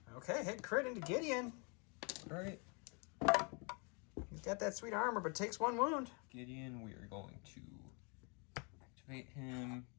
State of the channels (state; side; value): quieter; right; 34.2 dB